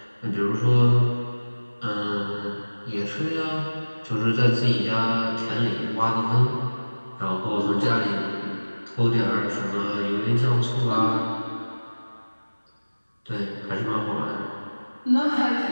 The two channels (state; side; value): inverted; both; correlation -1.00